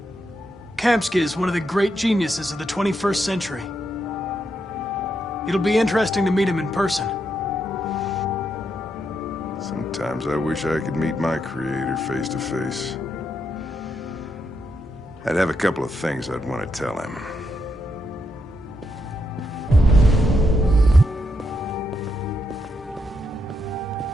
Kamsky is one of the great geniuses of the 21st century. It'll be interesting to meet him in person. Sometimes I wish I could meet my creator face to face. I'd have a couple of things I'd want to tell him.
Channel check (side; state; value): both; normal; correlation 0.81